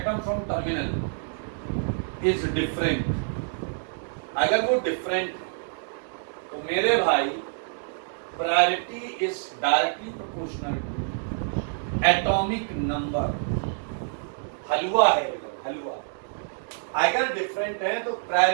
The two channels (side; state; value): left; silent; digital silence